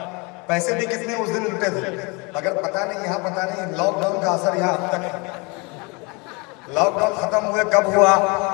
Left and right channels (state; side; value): quieter; right; 29.1 dB